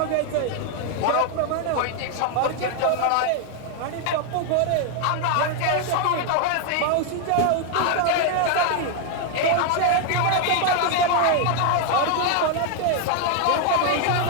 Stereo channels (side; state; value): both; different; correlation 0.01